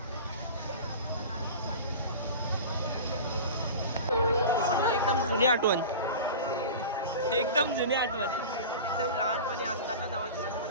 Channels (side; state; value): both; inverted; correlation -0.33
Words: एकदम जुनी आठवण. एकदम लहानपणी असताना जवळची